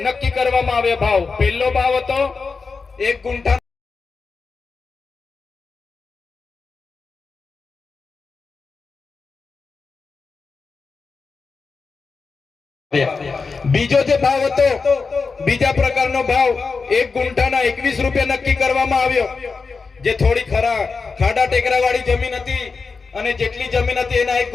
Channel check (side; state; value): right; quieter; 4.6 dB